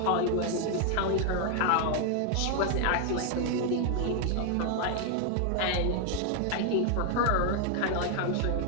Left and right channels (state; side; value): different; both; correlation 0.00